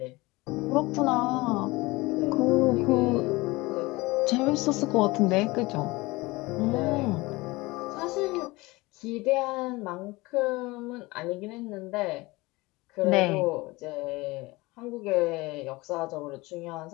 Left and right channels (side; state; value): right; quieter; 22.0 dB